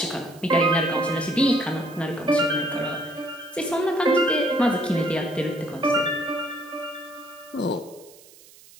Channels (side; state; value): right; noise; hiss, 23 dB below the sound